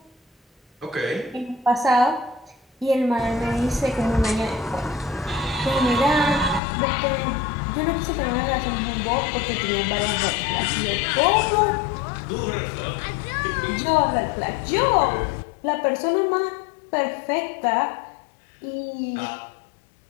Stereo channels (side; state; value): right; drops out; at 6.6 s